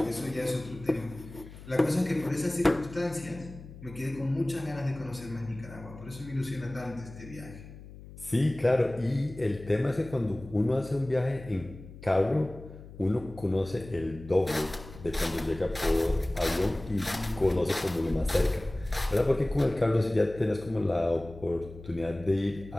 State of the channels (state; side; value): noise; left; hum, 16 dB below the sound